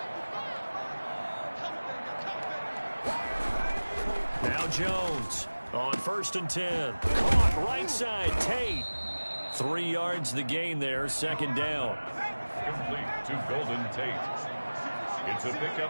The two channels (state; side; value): inverted; both; correlation -1.00